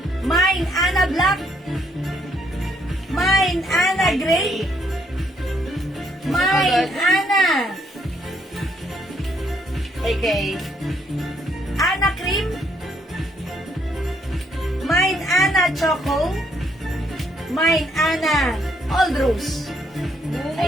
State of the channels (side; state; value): both; normal; correlation 0.71